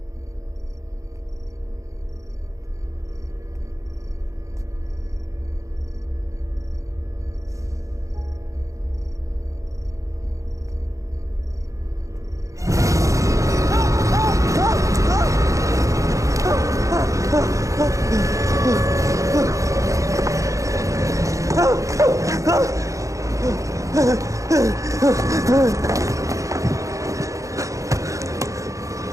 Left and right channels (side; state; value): left; late; 0.15 ms